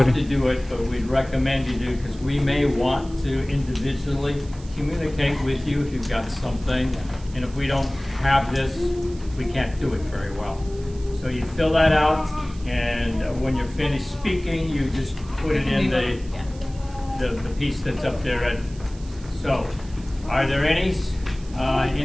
to do it, but we'd recommend you do, because we may want to individually communicate with you if you've got something. And if we don't have this, we can't do it very well. So you fill that out, and when you're finished speaking, you just put it in the piece that's up there. So, are there any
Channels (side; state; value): right; noise; hiss, 23 dB below the sound